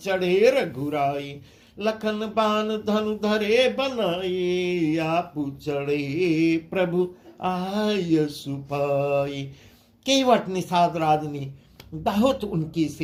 रघुराई, लखन बान धनु धरे बनाए, आपु चढ़े प्रभु आय सुपाई। केवट निषाद राज ने बहुत उनकी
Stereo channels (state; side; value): identical; both; correlation 1.00